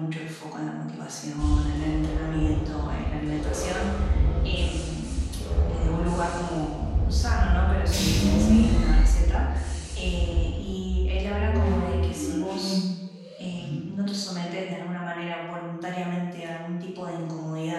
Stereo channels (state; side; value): identical; both; correlation 1.00